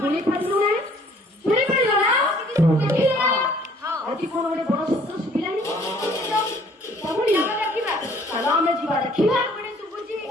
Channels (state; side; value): normal; both; correlation 0.58